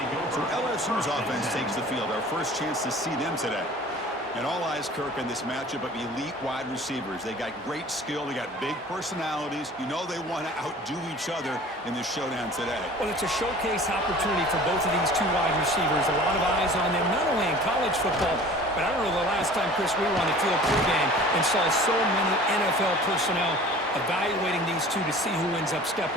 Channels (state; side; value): normal; both; correlation 0.45